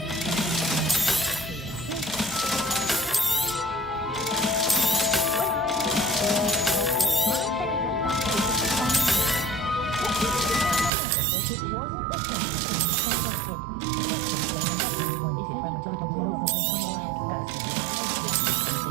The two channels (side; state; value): left; drops out; at 10.9 s